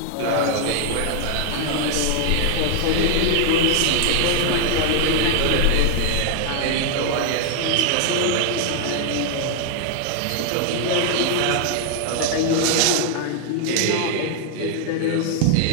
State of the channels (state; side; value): different; both; correlation 0.00